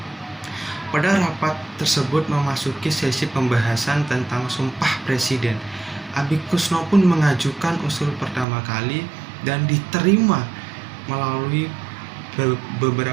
Pada rapat tersebut memasuki sesi pembahasan tentang Sumpah Presiden. Abi Kusno pun mengajukan usul pertama kali dan diterima melalui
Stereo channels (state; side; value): drops out; left; at 8.5 s